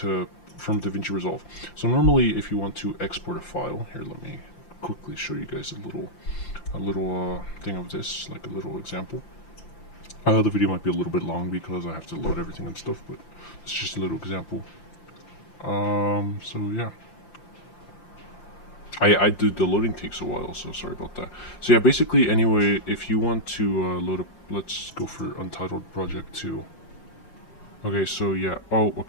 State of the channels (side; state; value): right; late; 5.8 ms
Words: from DaVinci Resolve. So normally if you want to export a file, here let me quickly show you guys a little thing of this, like a little example. The video might be a little bit long because I have to load everything and stuff, but it's just a little example. So yeah. I did the loading takes a while, so sorry about that. So yeah, basically, anyway, if you want to load up, let's go for Untitled Project 2. Okay, so yeah, oh,